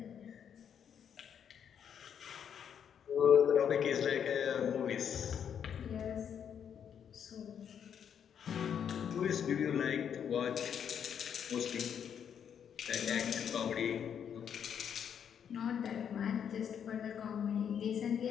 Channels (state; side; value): quieter; right; 8.2 dB